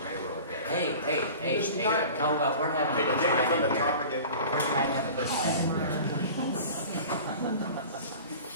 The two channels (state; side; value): inverted; both; correlation -0.39